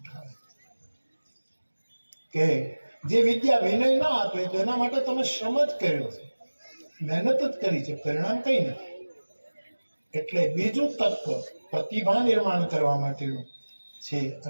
કે જે વિદ્યા વિનય ના આપે તો એના માટે તમે શ્રમ જ કર્યો છે, મહેનત જ કરી છે, પરિણામ કઈ નથી. એટલે બીજું તત્વ પ્રતિભા નિર્માણ કરવા માટેનું છે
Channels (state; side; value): inverted; both; correlation -1.00